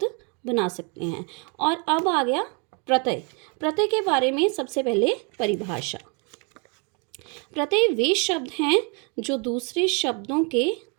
बना सकते हैं। और अब आ गया प्रत्यय। प्रत्यय के बारे में सबसे पहले परिभाषा। प्रत्यय वे शब्द हैं जो दूसरे शब्दों के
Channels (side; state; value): left; quieter; 34.2 dB